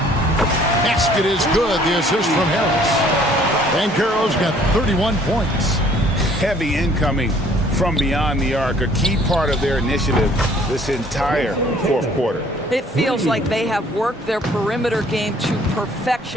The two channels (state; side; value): normal; both; correlation 0.58